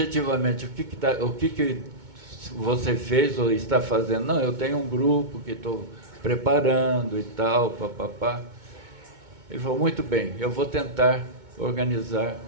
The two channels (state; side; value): late; left; 2.2 ms